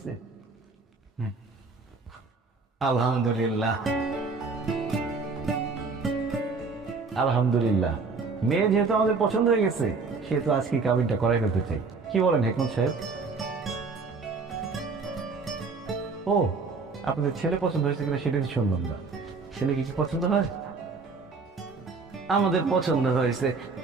আলহামদুলিল্লাহ। আলহামদুলিল্লাহ, মেয়ে যেহেতু আমাদের পছন্দ হয়ে গেছে সেহেতু আজকে কাবিনটা করাই ফেলতে চাই। কি বলেন হেকমত সাহেব? ও, আপনাদের ছেলে পছন্দ হয়েছে কিনা সেটা তো শুনলাম না। ছেলেকে কি পছন্দ হয়? আমাদের পছন্দ হয়েছে,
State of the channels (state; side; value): quieter; left; 4.4 dB